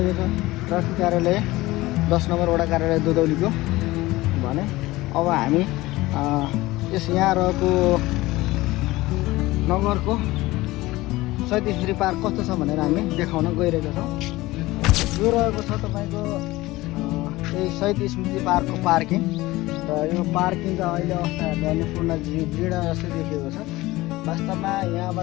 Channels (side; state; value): right; quieter; 19.0 dB